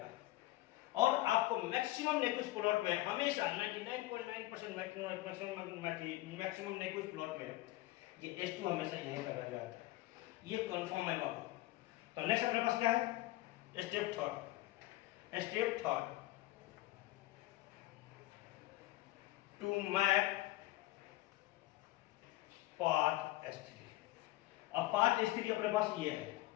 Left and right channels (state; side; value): quieter; right; 18.1 dB